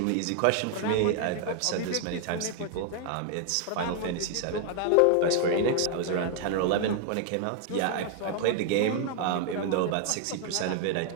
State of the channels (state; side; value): different; both; correlation 0.00